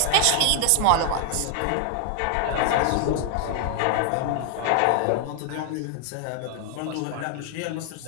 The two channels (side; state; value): both; different; correlation 0.00